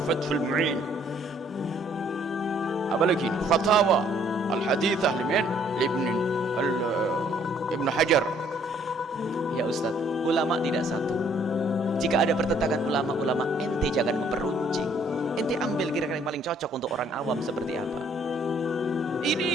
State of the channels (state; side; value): normal; both; correlation 0.63